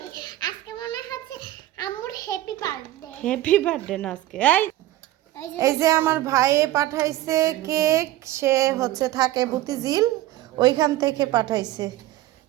আজকে মনে হচ্ছে আম্মুর হ্যাপি বার্থডে। হ্যাপি বার্থডে না আজকে। এই যে আমার ভাইয়ে পাঠাইছে কেক। সে হচ্ছে থাকে বুতিঝিল, ওইখান থেকে পাঠাইছে।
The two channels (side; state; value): left; quieter; 15.5 dB